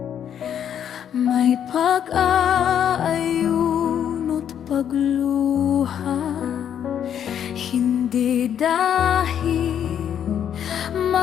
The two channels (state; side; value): quieter; right; 9.2 dB